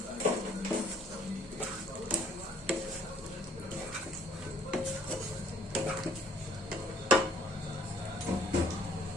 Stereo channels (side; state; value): both; normal; correlation 0.60